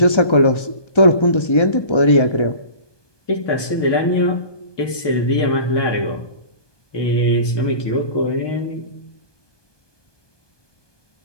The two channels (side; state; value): right; late; 1.2 ms